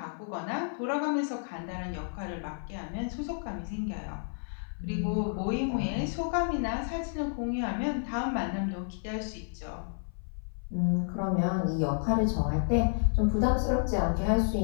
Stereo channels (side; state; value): right; silent; 57 dB below the other